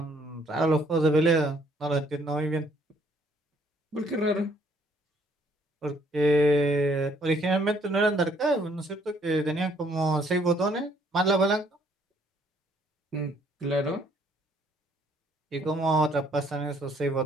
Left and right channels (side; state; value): both; normal; correlation 0.64